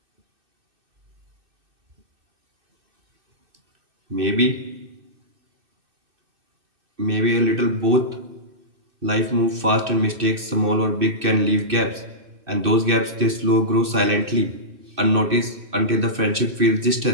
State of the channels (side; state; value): left; late; 2.6 ms